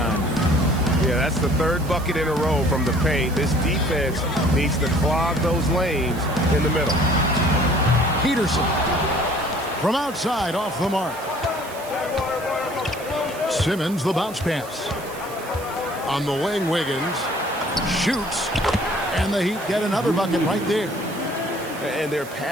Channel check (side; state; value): right; noise; hiss, 17 dB below the sound